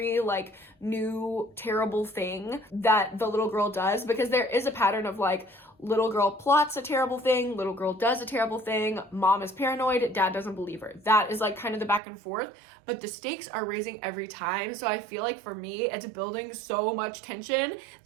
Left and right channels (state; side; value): drops out; left; at 12.0 s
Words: like new terrible thing that the little girl does, because there is a pattern of like, little girl plots a terrible thing, little girl does a terrible thing, mom is paranoid, dad doesn't believe her. That is like kind of the back and forth, but the stakes are raising every time. So I feel like for me, it's building so much tension